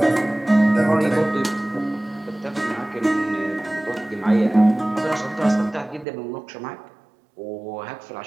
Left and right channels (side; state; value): left; drops out; at 6.1 s